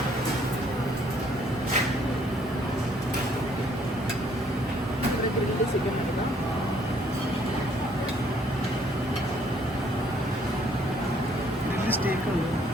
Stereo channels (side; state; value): both; normal; correlation 0.64